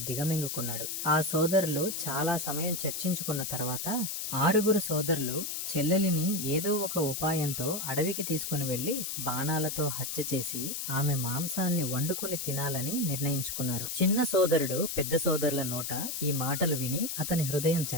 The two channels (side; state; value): left; noise; hiss, 4 dB below the sound